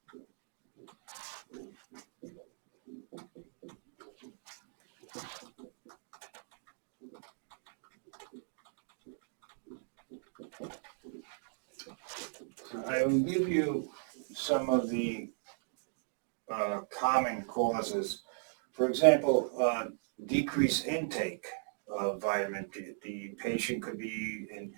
So I will give you some of the common causes. For example, decreased intake of vitamin D. The patient could be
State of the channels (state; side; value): silent; left; digital silence